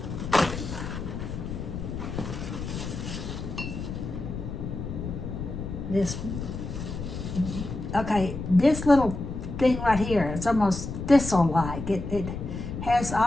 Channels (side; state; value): left; noise; rumble, 6 dB below the sound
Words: This little thing right here, it's almost thistle-like. It has